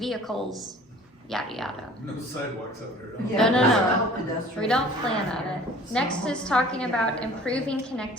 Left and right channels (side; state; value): both; normal; correlation 0.48